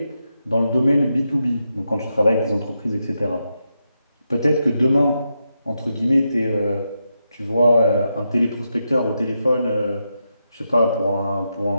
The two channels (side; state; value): both; inverted; correlation -0.85